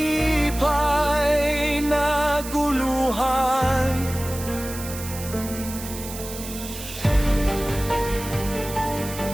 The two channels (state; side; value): noise; right; hiss, 11 dB below the sound